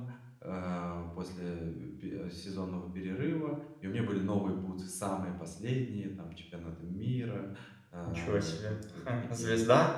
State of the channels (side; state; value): both; identical; correlation 1.00